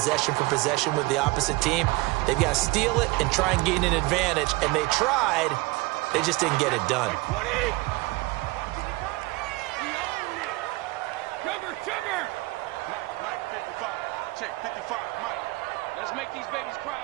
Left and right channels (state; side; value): quieter; left; 22.9 dB